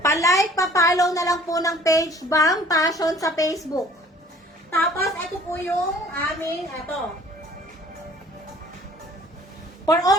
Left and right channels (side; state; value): both; normal; correlation 0.52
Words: Palike, pa-follow na lang po ng page BAM Fashion sa Facebook. Tapos, ito po yung aming, ito. For